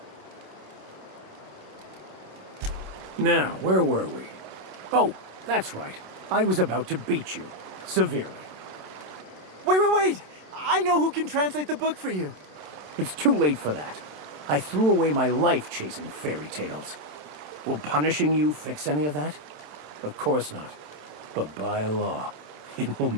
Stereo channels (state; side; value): late; left; 27 ms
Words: Now, where were we? Oh, that's right. I was about to beat you. Severely. Wait! I know who can translate the book for you. It's too late for that. I threw away my life chasing fairy tales. Will punishing you fix any of that? Of course not. But by law, it will